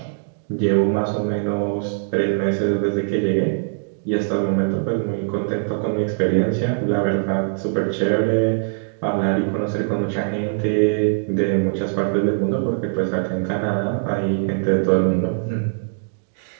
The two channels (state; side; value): silent; left; digital silence